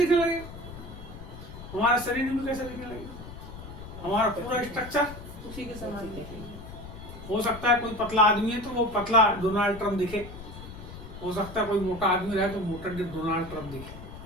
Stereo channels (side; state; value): left; noise; rumble, 13 dB below the sound